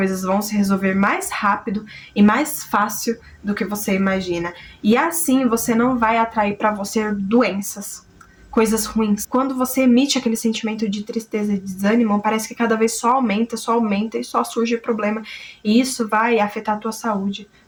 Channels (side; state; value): both; identical; correlation 1.00